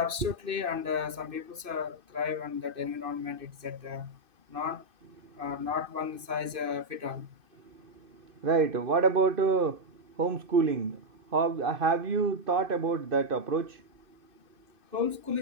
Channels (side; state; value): left; late; 2.6 ms